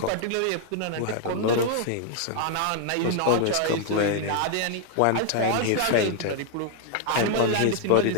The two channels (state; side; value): different; both; correlation 0.00